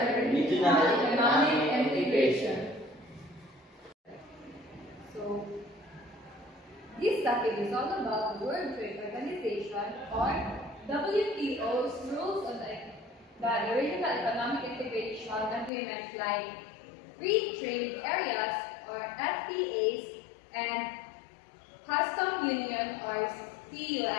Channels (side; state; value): right; drops out; at 15.7 s